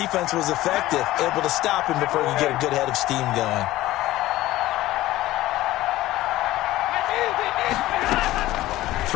was effective, able to stop him before he could get a good head of steam going.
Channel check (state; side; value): quieter; right; 16.2 dB